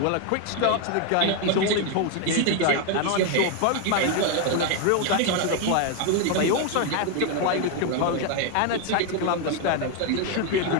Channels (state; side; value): different; both; correlation 0.01